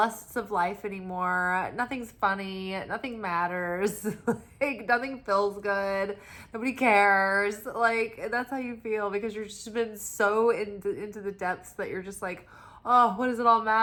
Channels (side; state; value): both; identical; correlation 1.00